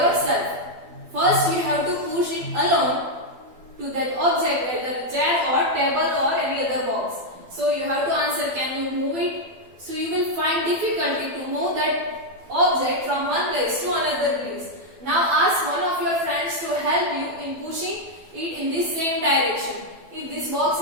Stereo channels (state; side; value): late; left; 12 ms